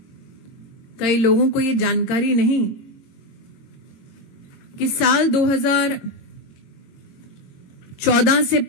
कई लोगों को यह जानकारी नहीं कि साल 2014 से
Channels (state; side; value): late; right; 22 ms